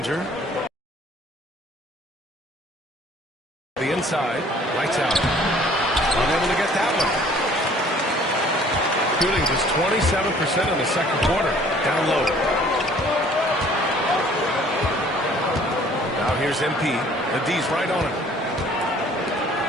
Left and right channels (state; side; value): normal; both; correlation 0.55